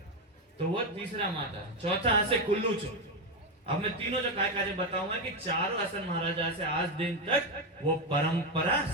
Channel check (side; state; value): both; normal; correlation 0.09